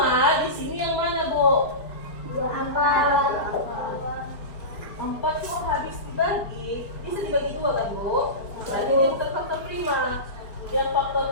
di sini yang mana, Bu? 4 itu habis dibagi, bisa dibagi 2 kan, Bu? Berarti dia bukan faktor prima. Yang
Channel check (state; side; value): late; right; 4.8 ms